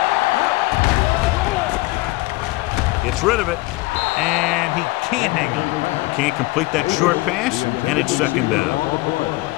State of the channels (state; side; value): quieter; right; 21.7 dB